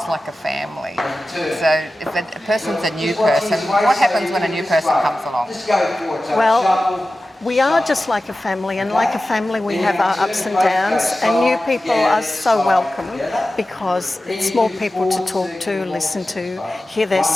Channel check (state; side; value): normal; both; correlation 0.95